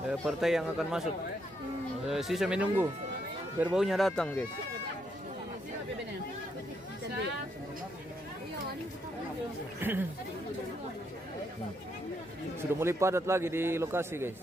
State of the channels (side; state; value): both; normal; correlation 0.77